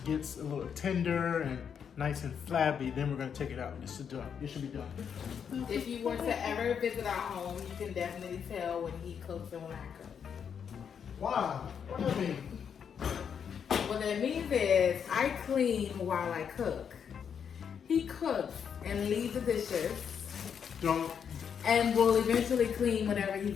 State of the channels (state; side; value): quieter; right; 7.4 dB